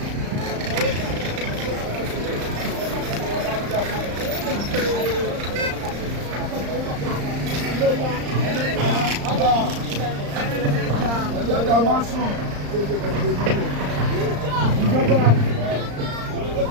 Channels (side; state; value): left; late; 35 ms